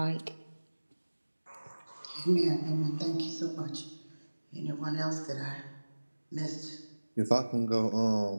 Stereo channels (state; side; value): inverted; both; correlation -1.00